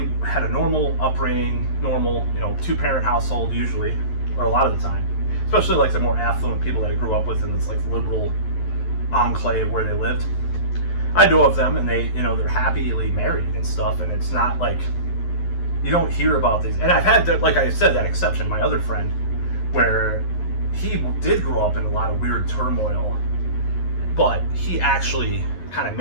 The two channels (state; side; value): late; right; 11 ms